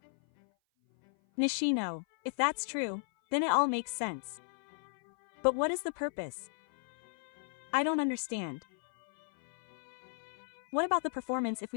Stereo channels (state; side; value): silent; right; 55 dB below the other